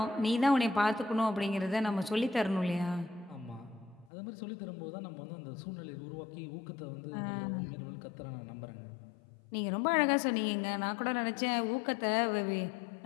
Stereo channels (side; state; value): right; drops out; at 4.1 s